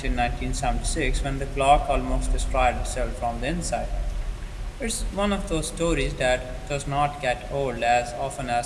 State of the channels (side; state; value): both; identical; correlation 1.00